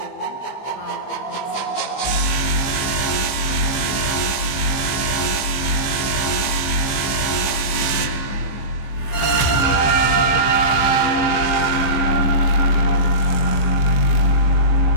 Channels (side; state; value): right; late; 15 ms